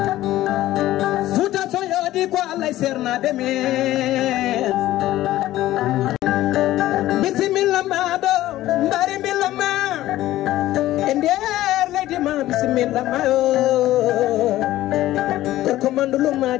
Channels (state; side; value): quieter; right; 15.1 dB